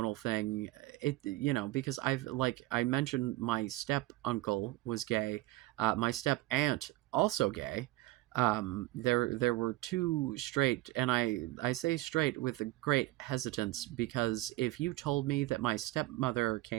thing, it because I mentioned my step uncle was gay, my step aunt also gay. There were two straight, and I say straight with a great hesitance, because if you told me that my stepmother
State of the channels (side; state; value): left; quieter; 18.6 dB